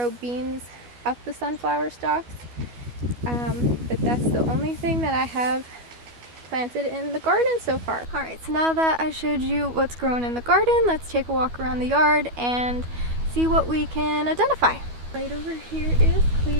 beans up the sunflower stalks. But that's the only thing that I have planted in the garden so far. Alright, so now that I showed you what's grown in the garden, let's take a walk around the yard and see what we can identify. Right over here is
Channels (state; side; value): late; left; 12 ms